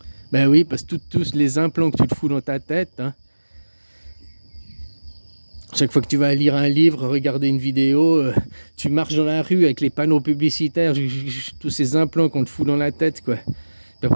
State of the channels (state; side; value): inverted; both; correlation -1.00